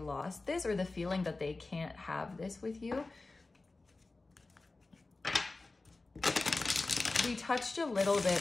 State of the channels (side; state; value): right; quieter; 3.4 dB